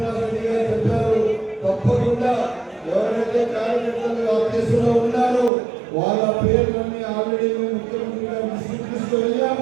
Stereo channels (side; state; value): left; drops out; at 5.5 s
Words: గారు చెప్పారు, తప్పకుండా ఎవరైతే కార్యకర్తలు ఆ కేసులో ఉన్నారో వాళ్ళ పేర్లన్నీ ఆల్రెడీ మేము ముఖ్యమంత్రి గారికి